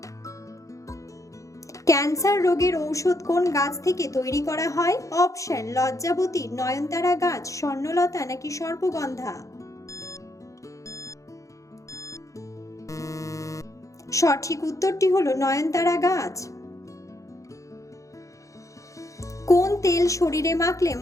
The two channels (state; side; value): late; right; 0.15 ms